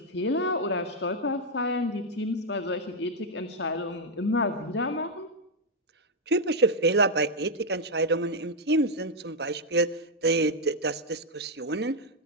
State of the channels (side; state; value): both; normal; correlation 0.00